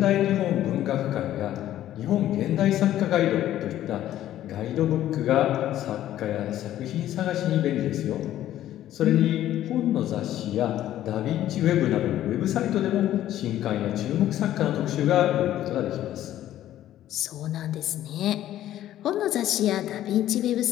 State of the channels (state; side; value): quieter; right; 12.8 dB